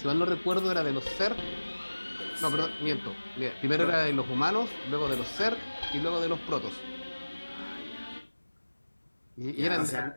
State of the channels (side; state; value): both; inverted; correlation -1.00